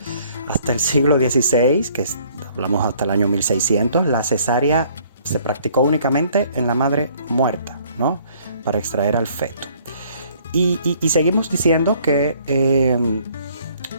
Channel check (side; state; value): both; inverted; correlation -0.60